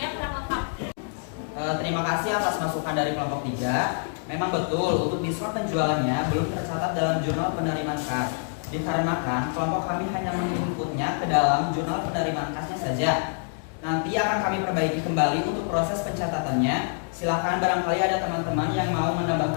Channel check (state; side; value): silent; right; 61 dB below the other